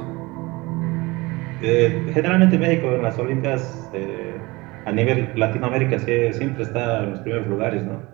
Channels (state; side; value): quieter; left; 22.9 dB